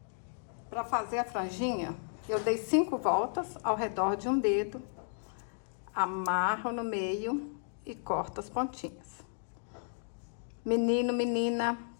Para fazer a franjinha, eu dei 5 voltas ao redor de um dedo, amarro no meio e corto as pontinhas. Menino, menina,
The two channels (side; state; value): right; silent; digital silence